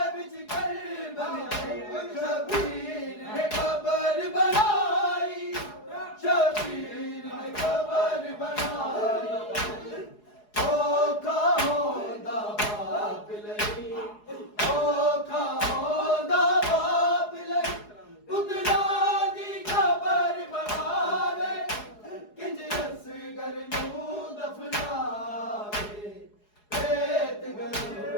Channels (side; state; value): right; late; 4.8 ms